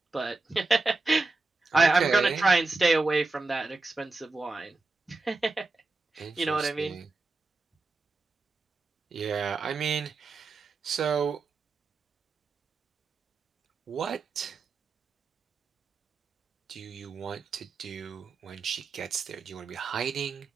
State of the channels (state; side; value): quieter; left; 3.5 dB